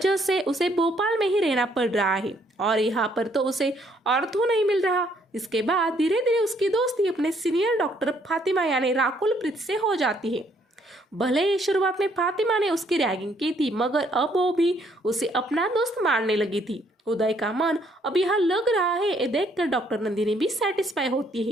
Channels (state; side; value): normal; both; correlation 0.67